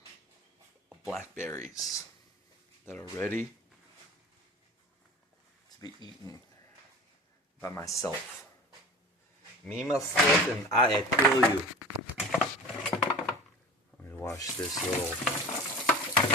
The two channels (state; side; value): normal; both; correlation 0.36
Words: blackberries that are ready to be eaten by myself. Me, myself, and I adore you. Let me wash this little